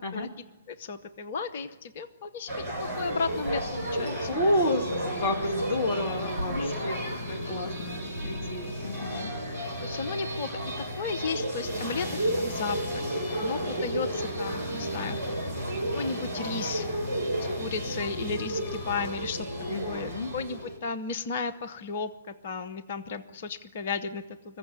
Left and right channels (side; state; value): both; inverted; correlation -0.62